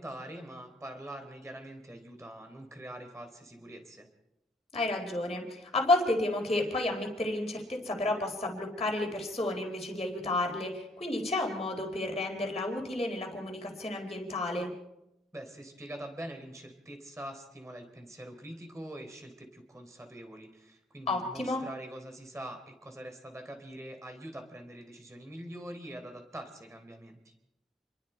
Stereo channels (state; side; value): normal; both; correlation 0.62